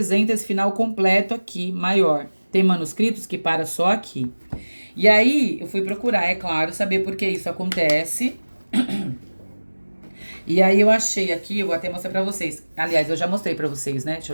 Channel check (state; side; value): inverted; both; correlation -1.00